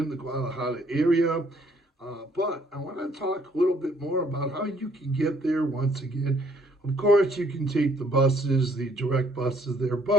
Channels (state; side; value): normal; both; correlation 0.64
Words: the Guadalajara area. But I want to talk a little bit more about how you can get there once again. Of course, you can take the buses, the direct buses there.